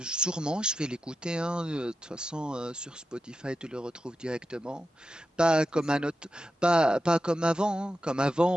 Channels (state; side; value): normal; both; correlation 0.90